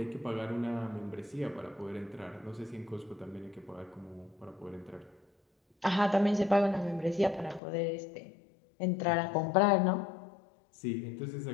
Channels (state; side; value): drops out; right; at 7.6 s